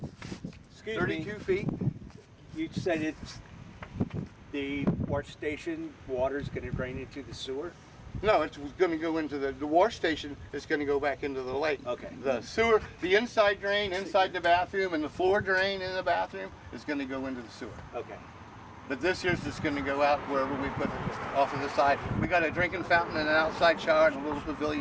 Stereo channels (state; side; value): identical; both; correlation 1.00